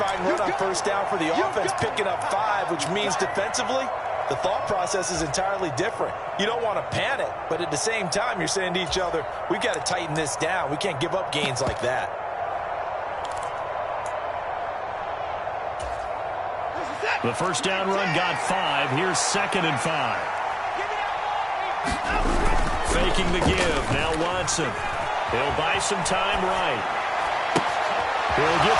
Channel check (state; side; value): identical; both; correlation 1.00